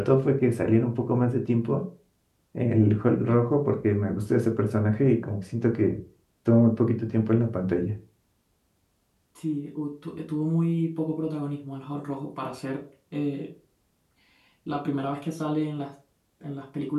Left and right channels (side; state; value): both; identical; correlation 1.00